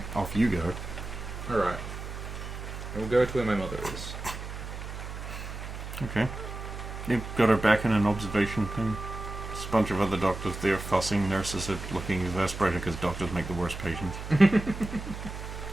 Off you go. Alright. We'll go to where my mother is. Okay. You've got her back in an observation thing. There's a bunch of other doctors there fussing. Nurses are looking exasperated because doctors make the worst patients.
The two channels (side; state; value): right; noise; hum, 8 dB below the sound